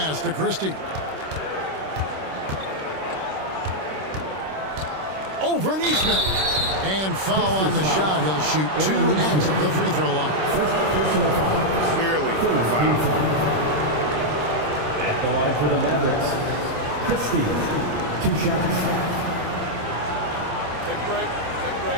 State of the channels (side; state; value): left; late; 26 ms